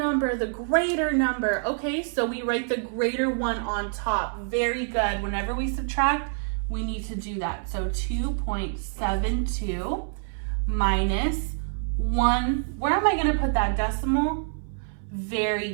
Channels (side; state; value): left; silent; 59 dB below the other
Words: the greater number. Okay, so we write the greater one on top. Very good. Whenever we subtract, we need to do that. So 2.72 minus 1. Where am I going to put that decimal? Very